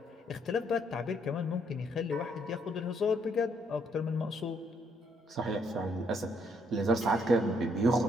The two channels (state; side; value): normal; both; correlation 0.71